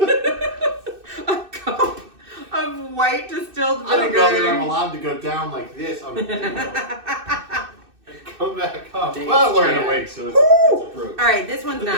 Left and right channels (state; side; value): late; left; 2.6 ms